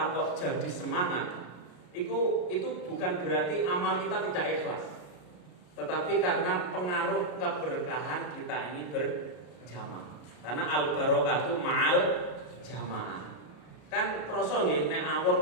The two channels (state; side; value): late; right; 33 ms